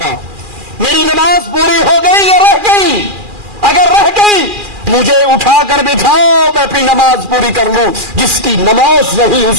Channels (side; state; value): left; late; 2.4 ms